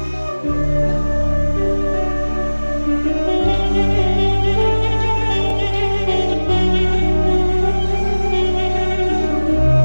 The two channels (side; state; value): both; inverted; correlation -1.00